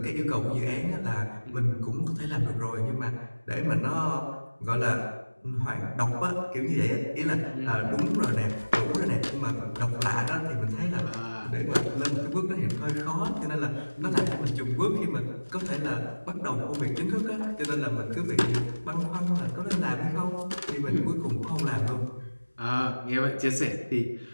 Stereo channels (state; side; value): inverted; both; correlation -1.00